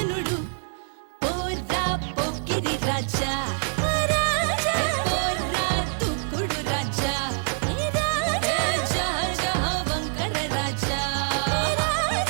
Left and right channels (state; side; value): silent; left; digital silence